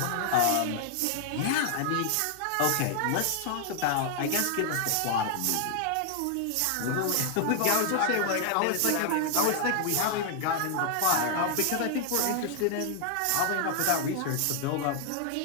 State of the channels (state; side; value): different; both; correlation 0.00